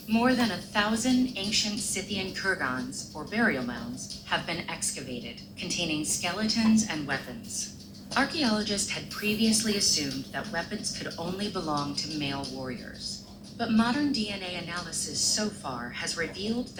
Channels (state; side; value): identical; both; correlation 1.00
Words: More than 1,000 ancient Scythian kurgans, or burial mounds, have been excavated, containing skeletons and weapons. Archaeologists had previously assumed that weapons could only belong to male warriors. But modern DNA analysis so far has revealed